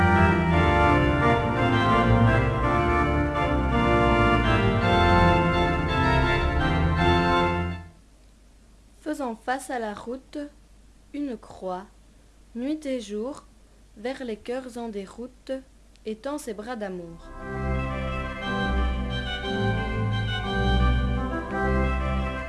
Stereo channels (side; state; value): both; identical; correlation 1.00